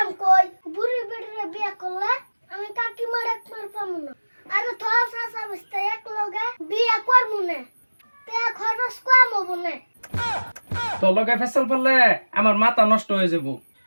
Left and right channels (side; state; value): both; inverted; correlation -1.00